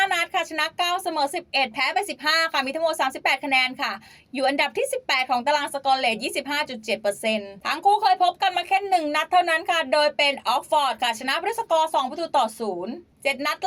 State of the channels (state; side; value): identical; both; correlation 1.00